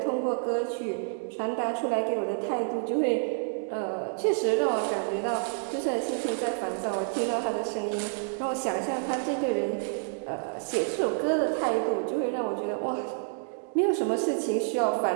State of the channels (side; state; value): left; silent; digital silence